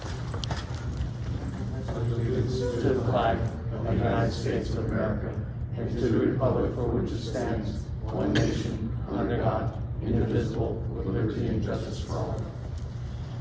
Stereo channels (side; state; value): both; identical; correlation 1.00